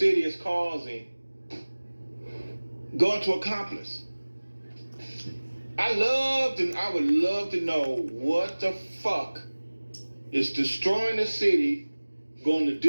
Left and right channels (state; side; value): inverted; both; correlation -1.00